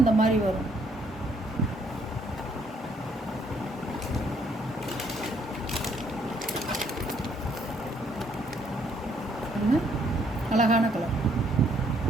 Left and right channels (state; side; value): normal; both; correlation 0.68